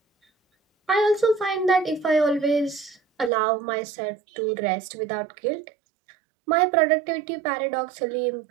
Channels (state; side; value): drops out; left; at 3.3 s